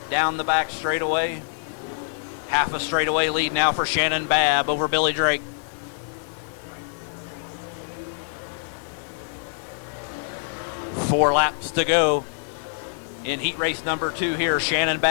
Down the back straightaway. Half a straightaway lead now for Shannon Babb over Billy Drake. Four laps to go in heat race number 2 here. Shannon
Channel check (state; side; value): silent; right; digital silence